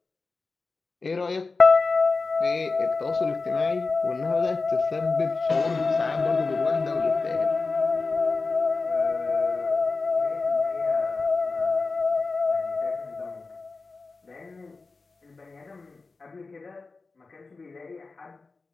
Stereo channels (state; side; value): quieter; right; 4.0 dB